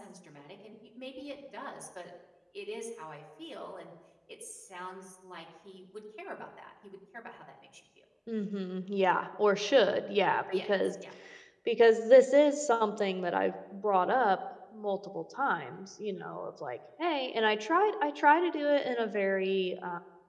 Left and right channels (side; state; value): both; identical; correlation 1.00